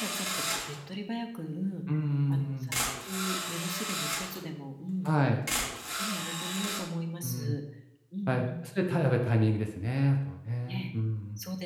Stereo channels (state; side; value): identical; both; correlation 1.00